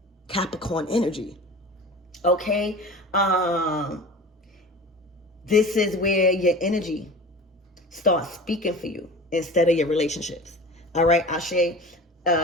Capricorn energy. Okay. This is where your energy starts speaking for you instead of your relationships. All right. Ashe.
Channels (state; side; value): normal; both; correlation 0.37